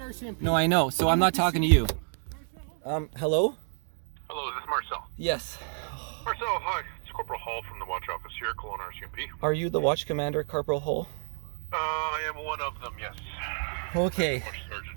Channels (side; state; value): left; silent; 58 dB below the other